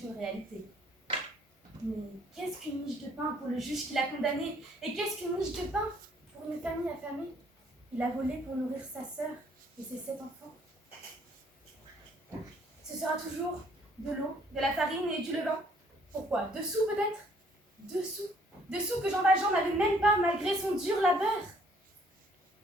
une réalité. Mais qu'est-ce qu'une miche de pain pour le juge qui l'a condamné? Et qu'est-ce qu'une miche de pain pour une famille affamée? Il a volé pour nourrir sa sœur et ses 7 enfants. Ce sera toujours de l'eau, de la farine et du levain. Pourquoi? 2 sous peut-être? 2 sous. 2 sous que Jean Valjean n'avait même pas malgré son dur labeur.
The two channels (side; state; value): both; normal; correlation 0.63